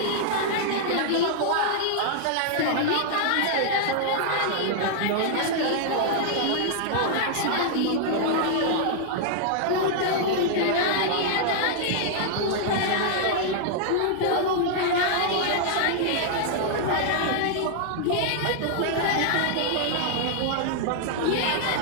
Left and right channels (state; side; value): different; both; correlation -0.01